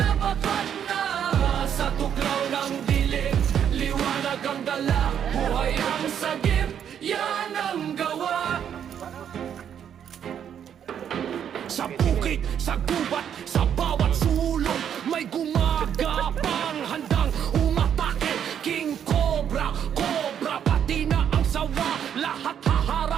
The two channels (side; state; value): left; quieter; 8.8 dB